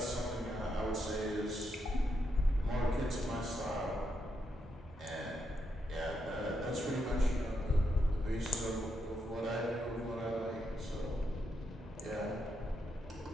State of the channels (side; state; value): both; normal; correlation 0.81